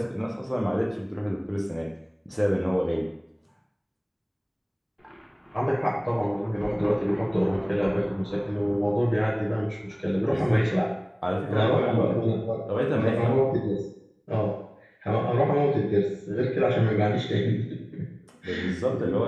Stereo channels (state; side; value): identical; both; correlation 1.00